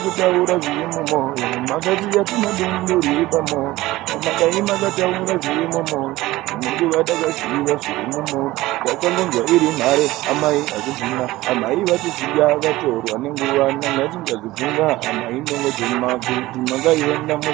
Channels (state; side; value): quieter; left; 17.8 dB